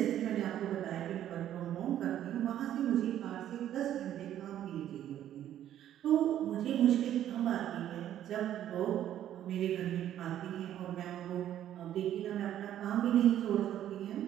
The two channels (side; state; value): left; quieter; 11.4 dB